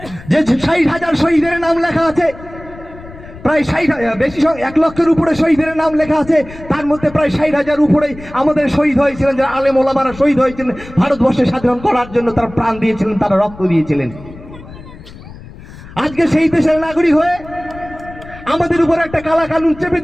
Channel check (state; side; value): noise; left; rumble, 17 dB below the sound